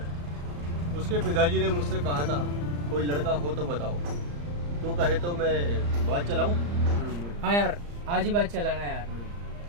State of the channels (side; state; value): left; late; 34 ms